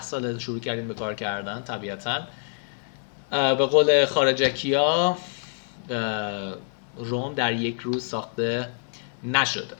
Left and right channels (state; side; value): silent; right; digital silence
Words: سال شروع کردین به کار کردن. طبیعتا به قول خارجکیا روم در یک روز ساخته نشده.